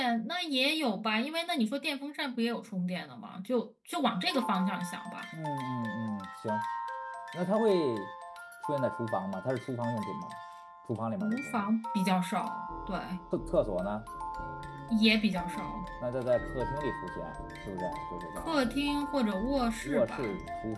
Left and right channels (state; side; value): identical; both; correlation 1.00